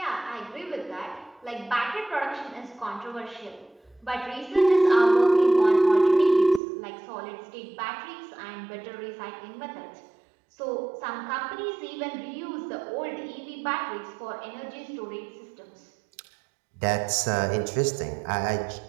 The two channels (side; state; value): left; drops out; at 6.6 s